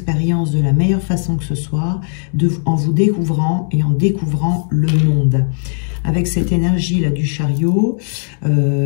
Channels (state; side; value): silent; right; digital silence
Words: de la meilleure façon que ce soit, en vous découvrant et en découvrant le monde. Avec cette énergie-là du chariot,